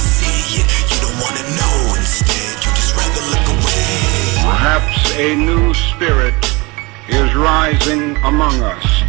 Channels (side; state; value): left; quieter; 25.4 dB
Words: see it. You don't want to know. Instead, you just rather look away. Perhaps a new spirit is rising among us.